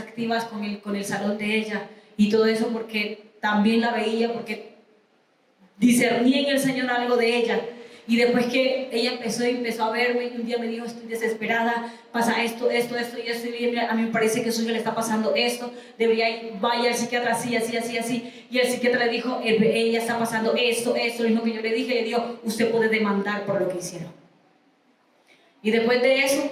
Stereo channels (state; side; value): identical; both; correlation 1.00